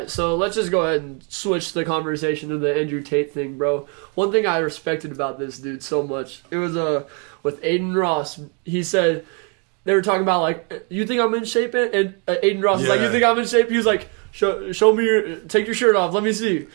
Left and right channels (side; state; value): left; quieter; 36.1 dB